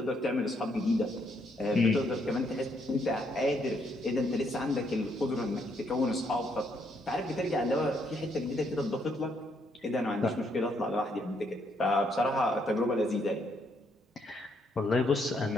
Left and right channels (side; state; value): both; normal; correlation 0.73